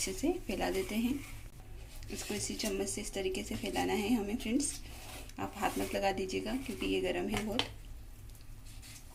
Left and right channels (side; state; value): both; identical; correlation 1.00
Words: से फैला देते हैं। इसको इसी चम्मच से इस तरीके से फैलाना है हमें फ्रेंड्स। आप हाथ मत लगा दीजिएगा, क्योंकि ये गर्म है बहुत।